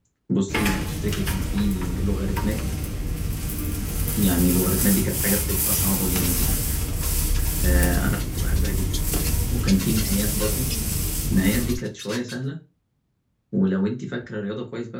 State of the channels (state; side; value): identical; both; correlation 1.00